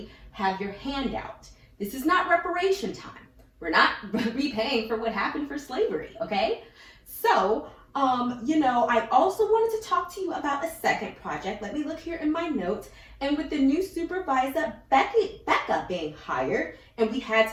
have your hand out. This is not reparation time. We're not repaying for what happened for slavery, okay? So, I also wanted to talk to you about a second project. Let me look here in my notes. And with the new supervisor, Becca being hired, and we had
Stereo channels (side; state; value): both; identical; correlation 1.00